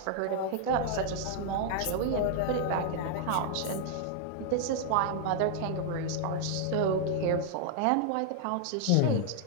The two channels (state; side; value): different; both; correlation 0.00